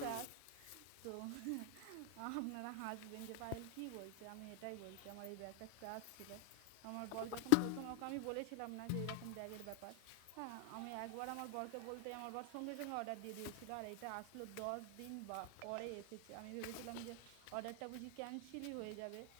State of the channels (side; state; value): both; different; correlation 0.00